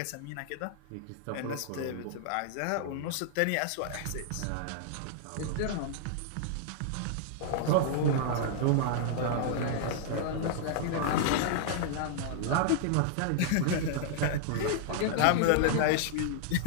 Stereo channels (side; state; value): both; different; correlation -0.01